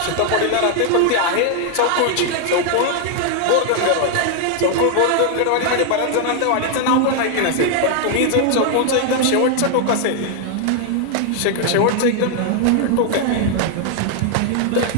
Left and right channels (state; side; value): different; both; correlation 0.00